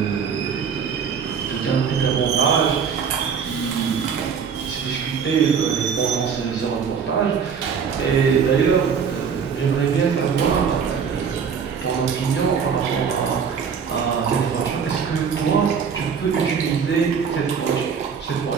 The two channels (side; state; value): left; quieter; 6.6 dB